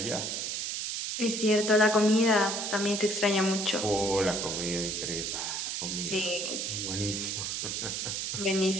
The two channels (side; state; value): right; noise; hiss, 2 dB below the sound